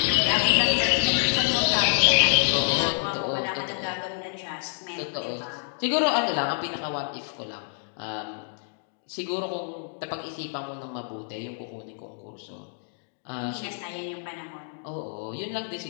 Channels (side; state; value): right; silent; 60 dB below the other